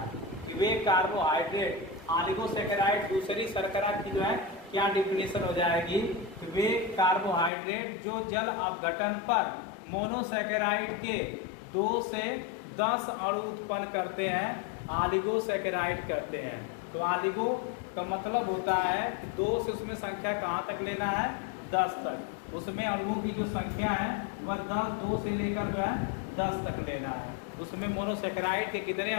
कि वे कार्बोहाइड्रेट ऑलिगोसैकेराइड दूसरी शर्करा की जो है क्या डिफिनेशन हो जाएगी कि वे कार्बोहाइड्रेट जो जल अपघटन पर मोनोसैकेराइड के 2 से 10 अणु उत्पन्न करते हैं, ऑलिगोसैकेराइड करते हैं। तो ऑलिगो का मतलब होता है कि 2 से उसमें संख्या कहाँ तक लेना है 10 तक। उसमें अणुओं की जो संख्या है वह 2 से लेकर जो है 10 तक लेना है। उसमें मोनोसैकेराइड के कितने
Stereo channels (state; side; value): drops out; right; at 7.5 s